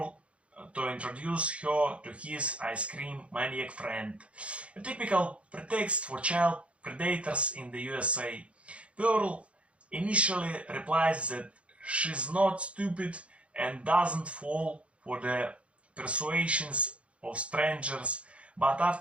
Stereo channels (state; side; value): late; left; 0.061 ms